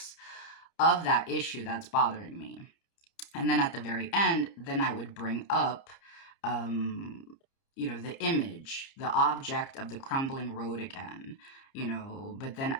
of that issue that's bothering me. And then at the very end, then I would bring up, you know, the image, the object of the crumbling road again, you know, but then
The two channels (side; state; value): right; late; 30 ms